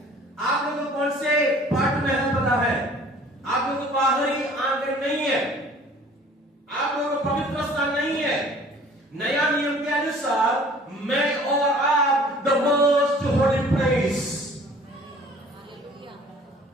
आप लोगों को कौन से पार्ट में है पता है? आप लोगों को बाहरी आंगन नहीं है, आप लोगों को पवित्र स्थान नहीं है। नया नियम के अनुसार मैं और आप the most holy place.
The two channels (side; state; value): both; normal; correlation 0.51